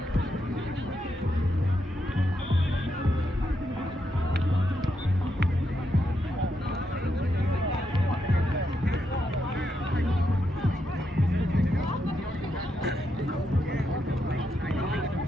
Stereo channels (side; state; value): both; normal; correlation 0.82